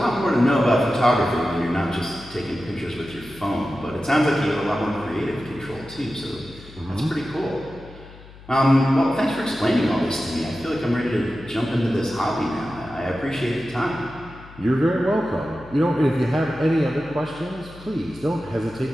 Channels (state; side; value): noise; left; hum, 19 dB below the sound